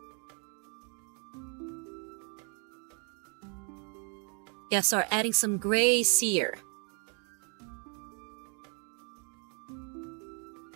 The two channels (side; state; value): left; quieter; 37.7 dB